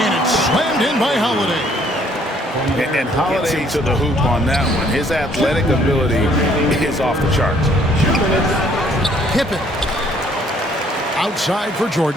it's slammed in by Holiday. And Holiday to the hoop on that one. His athletic ability is off the charts. Pippen. Outside for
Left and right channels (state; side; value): normal; both; correlation 0.62